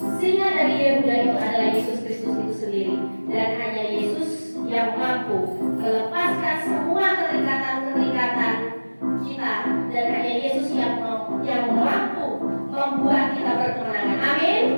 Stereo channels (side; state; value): both; inverted; correlation -1.00